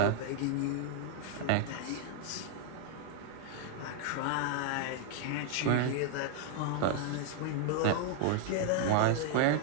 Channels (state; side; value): different; both; correlation 0.00